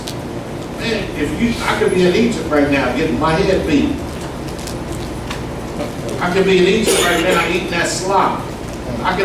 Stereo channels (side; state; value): both; identical; correlation 1.00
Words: "Man, I could be in Egypt right now getting my head beat. I could be in Egypt right now eating that slop. I